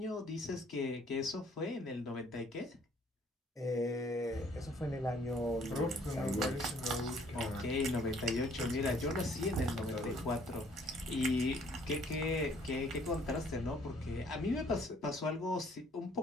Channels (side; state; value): both; normal; correlation 0.60